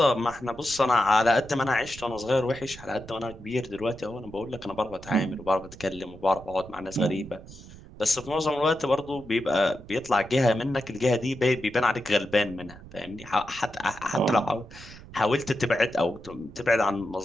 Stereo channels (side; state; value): right; noise; rumble, 17 dB below the sound